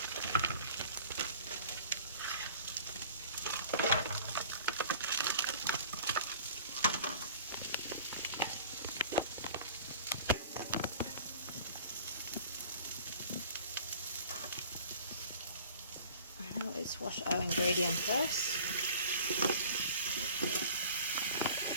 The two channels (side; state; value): both; inverted; correlation -0.46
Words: Now let's wash our ingredient first.